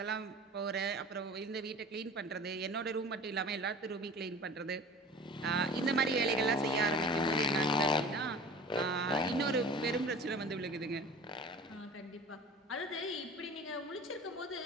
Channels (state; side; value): normal; both; correlation 0.40